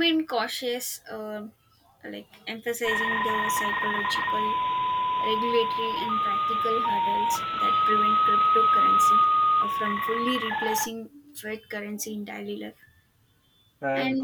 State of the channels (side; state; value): both; identical; correlation 1.00